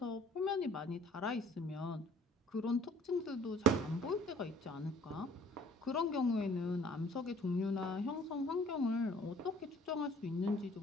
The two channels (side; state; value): both; normal; correlation 0.54